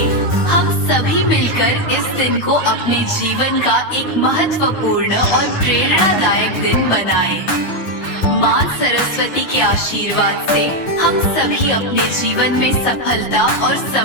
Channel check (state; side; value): late; right; 9.7 ms